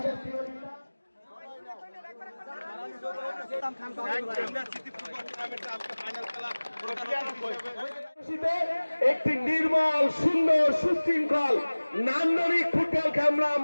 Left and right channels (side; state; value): both; inverted; correlation -1.00